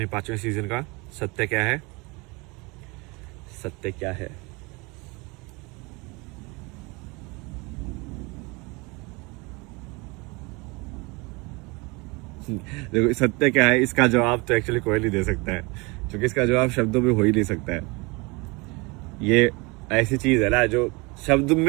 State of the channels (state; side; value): quieter; left; 26.8 dB